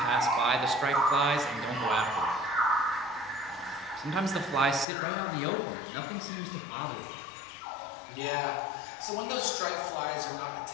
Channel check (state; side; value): drops out; right; at 4.9 s